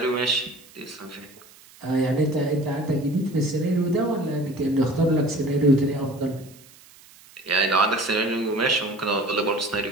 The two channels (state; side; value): noise; right; hiss, 24 dB below the sound